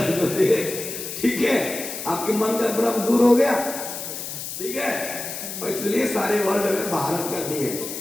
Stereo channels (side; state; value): left; noise; hiss, 7 dB below the sound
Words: जो थे, ठीक है, आपके मन का भ्रम दूर हो गया, ठीक है, और इसलिए सारे वर्ल्ड में भारत कर दिए।